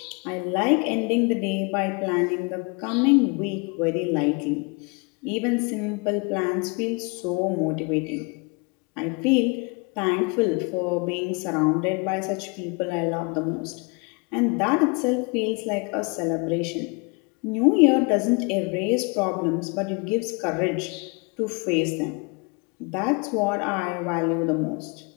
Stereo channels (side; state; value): right; quieter; 31.6 dB